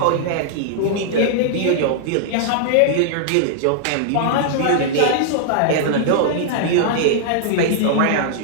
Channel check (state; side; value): different; both; correlation -0.01